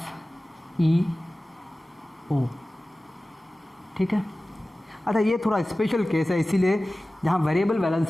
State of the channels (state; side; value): normal; both; correlation 0.97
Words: ठीक है। अच्छा, ये थोड़ा स्पेशल केस है इसीलिए जहाँ वेरिएबल